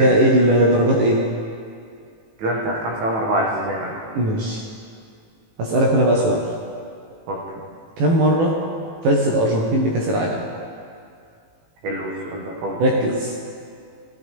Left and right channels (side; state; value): left; late; 18 ms